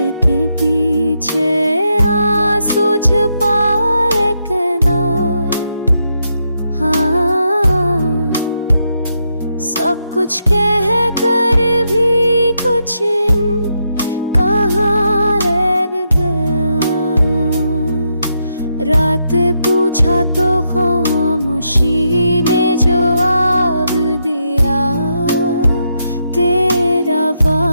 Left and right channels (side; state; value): both; inverted; correlation -0.81